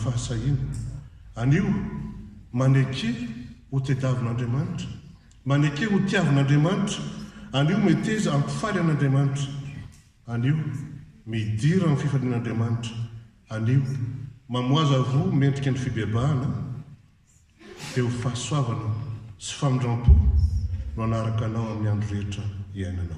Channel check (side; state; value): both; identical; correlation 1.00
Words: anio maneke ho tediavin'Andriamanitra maneke ho tiavin'Andriamanitra anio meteza ampifaly an'Andriamanitra anio midira amin'ny fifalian'Andriamanitra anio mamoaza vo mendrika ny fibebahana dia ho fahasoavana sy famindram-po no anaraka anao amin'ny andro rehetra